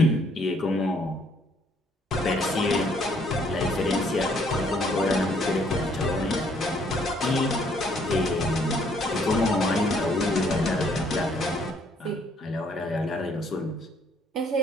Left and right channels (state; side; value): normal; both; correlation 0.66